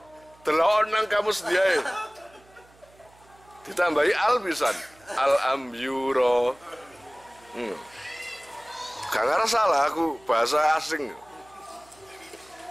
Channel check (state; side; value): noise; right; hum, 28 dB below the sound